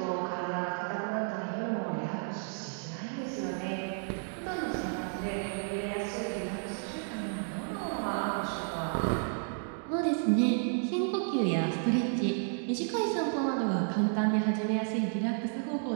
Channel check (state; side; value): silent; left; 56 dB below the other